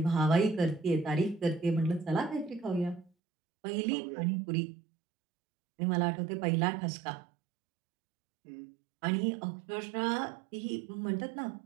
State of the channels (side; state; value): left; drops out; at 3.1 s